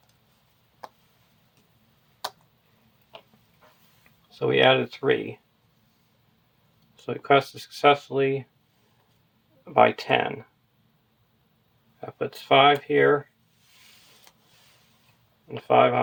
So we added 3. So we quested successfully by 10. That puts 5 here, and 5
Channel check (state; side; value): identical; both; correlation 1.00